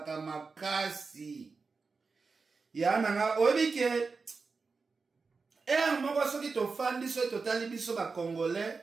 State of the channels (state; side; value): quieter; left; 4.5 dB